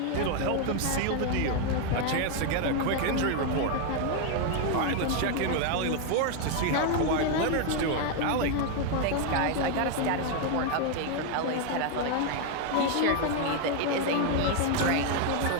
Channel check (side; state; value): both; different; correlation 0.01